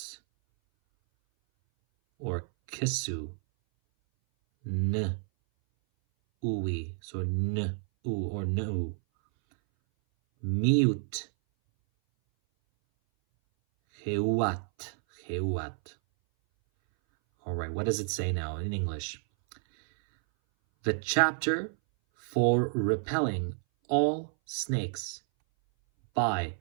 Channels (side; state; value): left; silent; 58 dB below the other